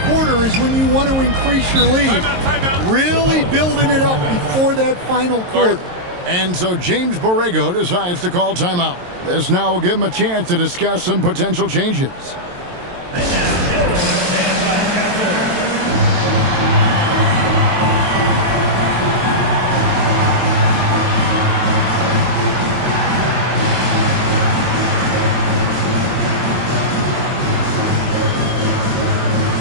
quarter is when you want to increase your lead. Timeout. Really building it up before that final quarter. And so James Borrego decides to call timeout. This now will give him a chance to discuss some potential changes.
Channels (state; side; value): late; left; 22 ms